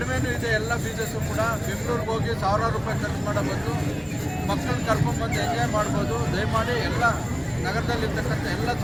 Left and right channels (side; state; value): both; identical; correlation 1.00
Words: ಇದೆ. ಎಲ್ಲ ಫೀಸಸ್ಸು ಕೂಡ ಬೆಂಗಳೂರಿಗೆ ಹೋಗಿ ಸಾವಿರಾರು ರೂಪಾಯಿ ಖರ್ಚು ಮಾಡೋ ಬಂದು ಮಕ್ಕಳನ್ನ ಕರ್ಕೊಂಡ್ಬಂದು ಎಂಜಾಯ್ ಮಾಡ್ಬೋದು. ದಯಮಾಡಿ ಎಲ್ಲ ನಗರದಲ್ಲಿರ್ತಕ್ಕಂಥ ಎಲ್ಲ